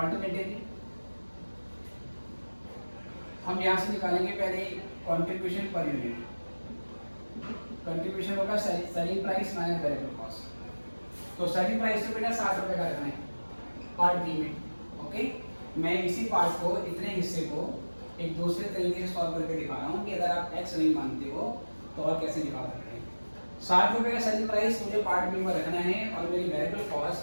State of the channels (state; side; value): inverted; both; correlation -1.00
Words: हम यहाँ से निकालेंगे पहले कंट्रीब्यूशन पर यूनिट। कंट्रीब्यूशन होगा selling price minus variable cost. तो सेलिंग प्राइस तो बेटा 60 रुपये का रखना है पार्ट बी में, ओके? मैं इसी पार्ट को, इतने हिस्से को एक दूसरे तरीके से सॉल्व करके दिखा रहा हूँ कि अगर आप x नहीं मानते हो तो और कैसे निकाल सकते हैं। 60 रुपये का सेलिंग प्राइस मुझे पार्ट बी में रखना है और मेरी वेरिएबल